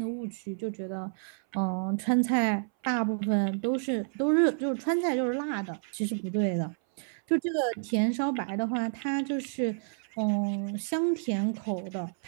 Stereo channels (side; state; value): left; silent; 58 dB below the other